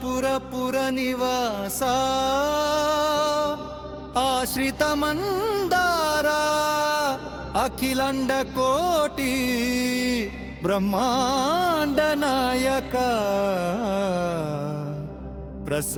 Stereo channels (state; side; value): identical; both; correlation 1.00